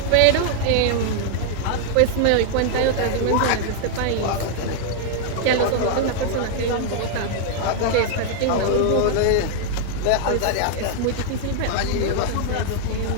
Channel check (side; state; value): both; different; correlation 0.00